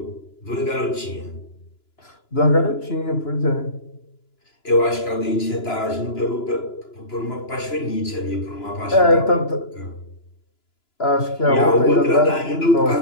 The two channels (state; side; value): late; right; 2.9 ms